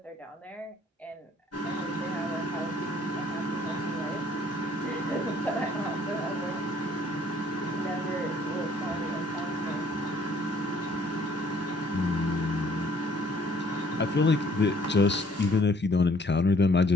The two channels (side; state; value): both; normal; correlation 0.60